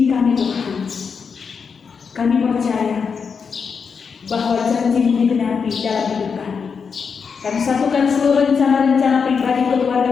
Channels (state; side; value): quieter; right; 5.9 dB